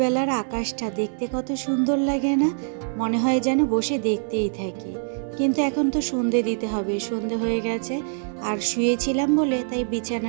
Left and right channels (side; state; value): left; silent; digital silence